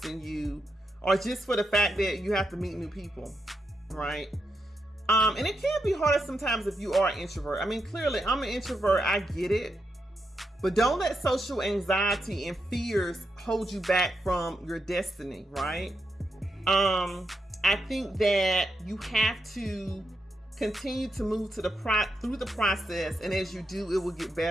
you, or just for the fact that you have to meet new people, right? And it can be harder sometimes if you are an introvert. I mean, clearly, I'm an introvert. I get it. But don't let social anxiety and fears hold you back from your destiny, right? I think that you have to continue to move through the process, and as you do, it will get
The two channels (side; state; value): both; normal; correlation 0.84